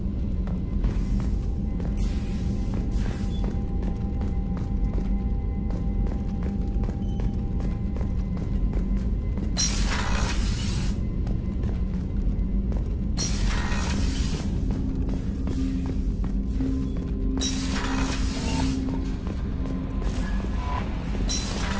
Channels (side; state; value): both; identical; correlation 1.00